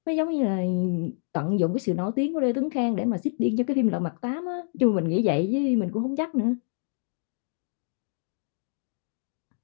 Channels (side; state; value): right; silent; digital silence